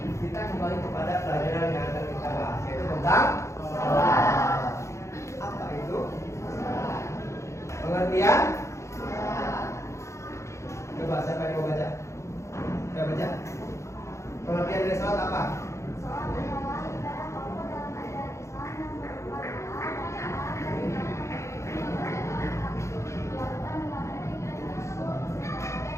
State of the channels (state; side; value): late; right; 0.14 ms